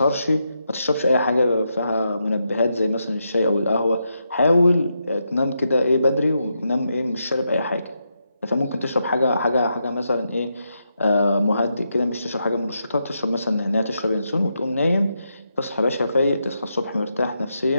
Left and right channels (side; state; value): both; inverted; correlation -0.83